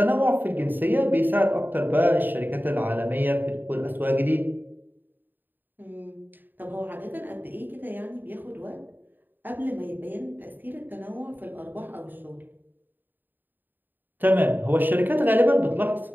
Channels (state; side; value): late; left; 0.091 ms